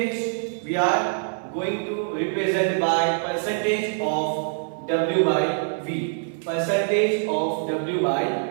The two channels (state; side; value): silent; left; digital silence